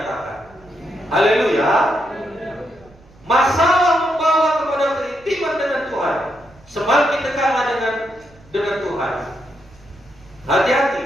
Haleluya. Masalah membawa kepada keintiman dengan Tuhan. Semakin dekatlah dengan Tuhan. Hati-hati,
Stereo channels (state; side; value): noise; right; rumble, 27 dB below the sound